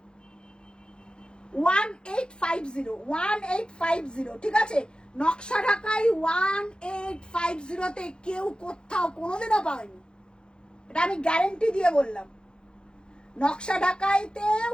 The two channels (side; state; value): right; late; 0.050 ms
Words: 1850, ঠিক আছে? নকশা ঢাকাই 1850 তে কেউ কোথাও কোনোদিনও পায়নি, এটা আমি গ্যারেন্টি দিয়ে বললাম। নকশা ঢাকাইতে